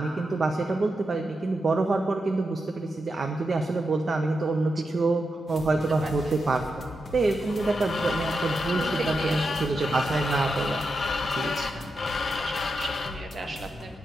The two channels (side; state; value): both; normal; correlation 0.87